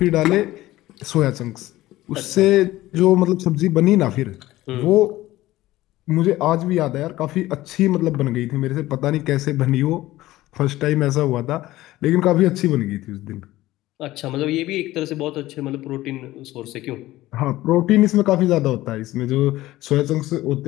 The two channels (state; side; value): quieter; right; 16.6 dB